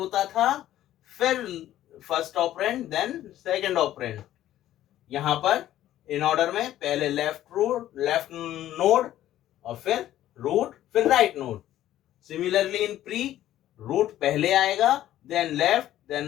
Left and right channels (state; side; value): quieter; right; 13.1 dB